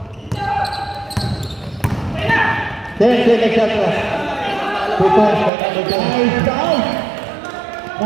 10-second shot clock. 2 points by number 10. Nice down.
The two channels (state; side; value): drops out; left; at 5.5 s